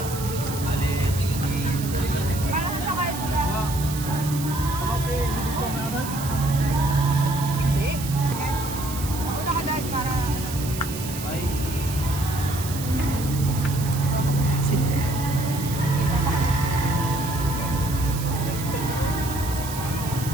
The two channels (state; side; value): noise; right; hiss, 10 dB below the sound